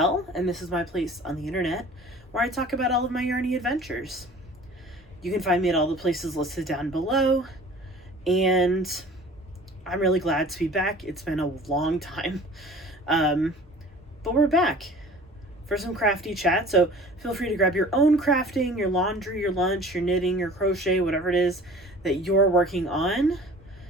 and this is my place on the internet where I talk about all of my yarny adventures. You can find me at all the places listed down below, and I'm really glad to be back. It's been a long time, but we're back for some crafty chat, so feel free to grab your own crafting, your laundry, your lunch, your knitting, your crochet, whatever it is that you're working on,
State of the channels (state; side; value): normal; both; correlation 0.45